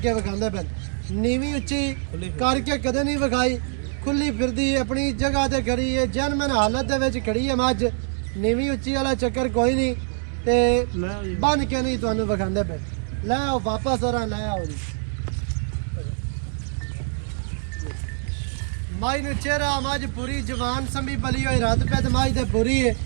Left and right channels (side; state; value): left; silent; 62 dB below the other